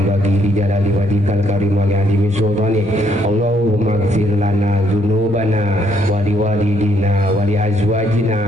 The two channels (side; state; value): both; normal; correlation 0.70